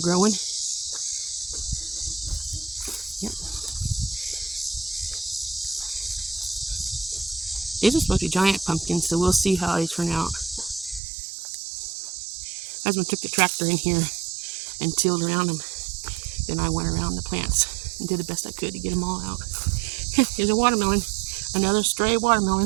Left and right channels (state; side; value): drops out; left; at 11.0 s